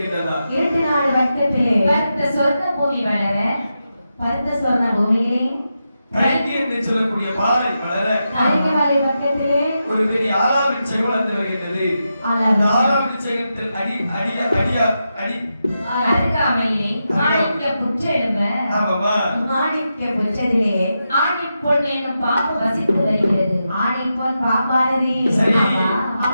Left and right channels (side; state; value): both; inverted; correlation -0.87